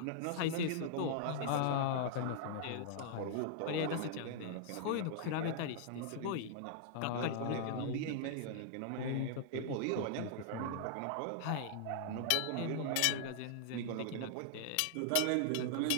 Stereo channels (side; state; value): both; different; correlation -0.01